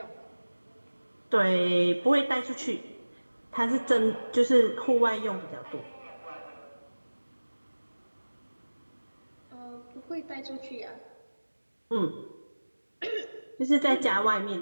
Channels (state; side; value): inverted; both; correlation -1.00